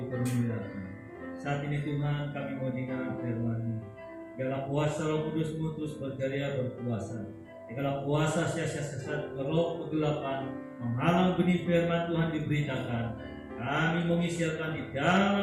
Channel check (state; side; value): identical; both; correlation 1.00